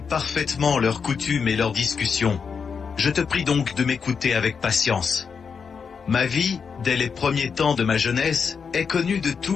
parfaitement leurs coutumes et leurs discussions. Je te prie donc de m'écouter avec patience. Ma vie, dès les premiers temps de ma jeunesse, est connue de tous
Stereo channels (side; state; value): right; quieter; 6.0 dB